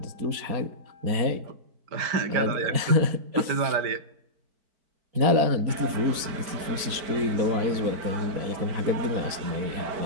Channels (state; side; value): late; left; 4.2 ms